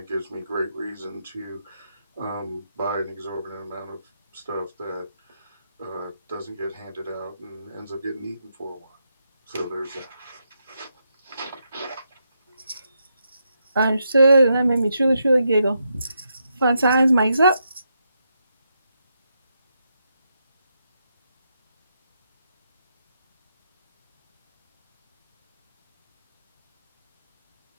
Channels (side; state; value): both; inverted; correlation -0.82